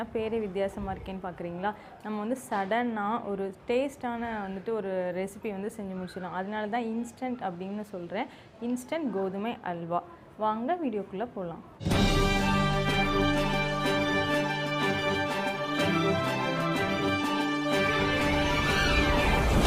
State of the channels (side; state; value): both; identical; correlation 1.00